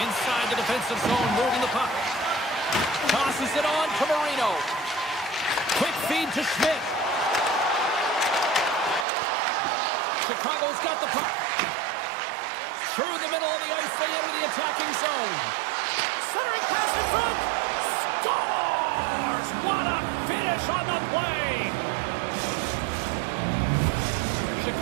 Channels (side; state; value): left; drops out; at 9.1 s